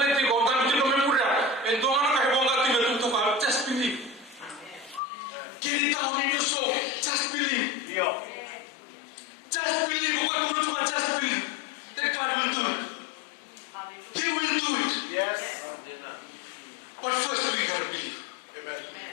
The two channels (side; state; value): right; drops out; at 5.0 s